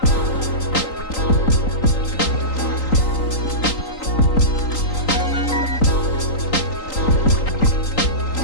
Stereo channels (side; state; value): right; late; 3.9 ms